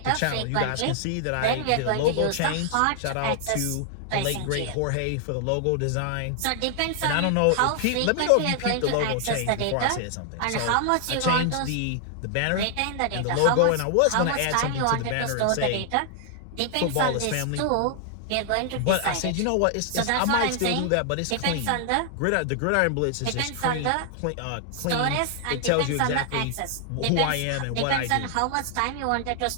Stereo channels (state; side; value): different; both; correlation 0.00